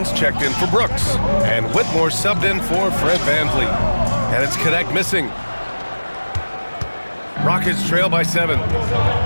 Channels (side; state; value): both; inverted; correlation -1.00